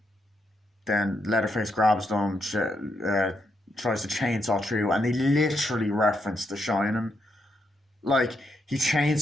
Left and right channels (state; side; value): normal; both; correlation 0.80